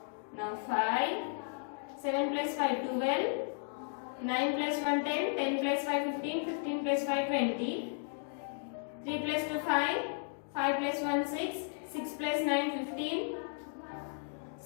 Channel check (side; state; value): right; silent; digital silence